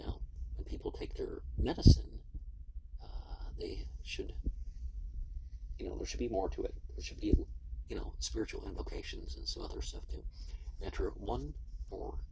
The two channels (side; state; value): both; identical; correlation 1.00